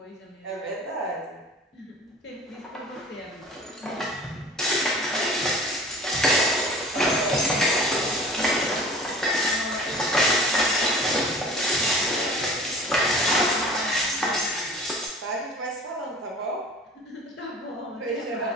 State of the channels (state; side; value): normal; both; correlation 0.43